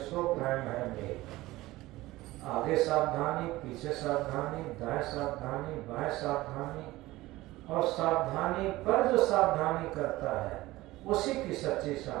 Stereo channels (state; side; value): quieter; left; 18.3 dB